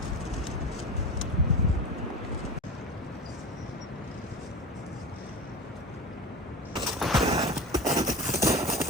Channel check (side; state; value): both; normal; correlation 0.30